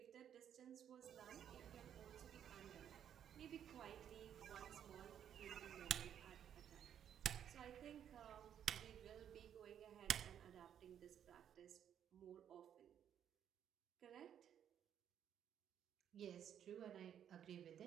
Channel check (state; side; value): quieter; left; 9.4 dB